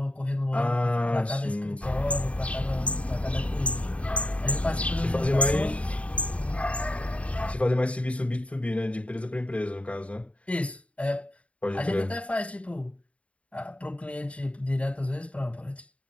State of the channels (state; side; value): late; right; 0.064 ms